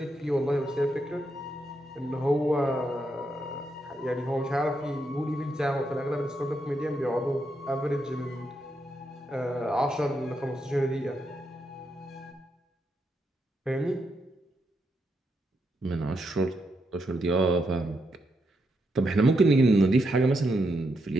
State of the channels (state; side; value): normal; both; correlation 0.81